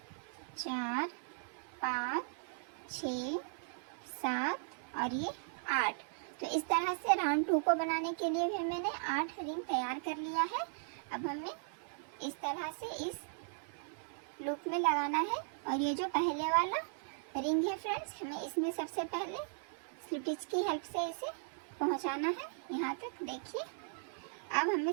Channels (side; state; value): left; silent; 53 dB below the other